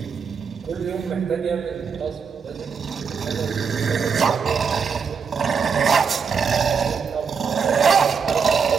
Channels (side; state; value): left; quieter; 6.0 dB